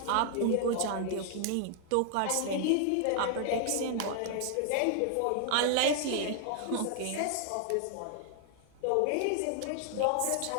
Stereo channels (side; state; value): both; different; correlation 0.00